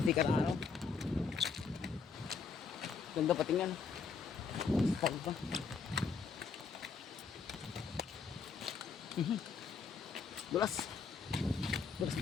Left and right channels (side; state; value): right; quieter; 5.4 dB